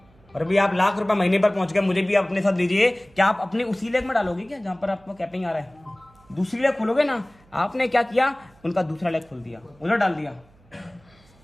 और अभी आप लाख रुपया महीने पर पहुंच गए, मुझे भी आप अपने साथ लीजिए। क्या आप अपनी उसी लेग में डालोगे क्या जहां पर आपको कैपिंग आ रहा है? दूसरी लेग खोलोगे ना। आपने क्या किया, उनका दूसरा लेग खोल दिया, उधर डाल दिया।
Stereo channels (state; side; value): noise; right; hum, 29 dB below the sound